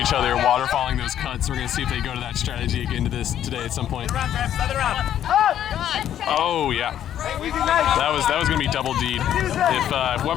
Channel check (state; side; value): quieter; right; 10.7 dB